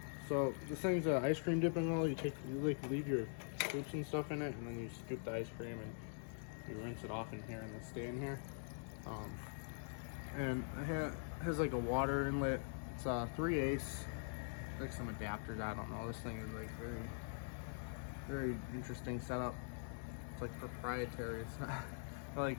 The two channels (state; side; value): silent; right; digital silence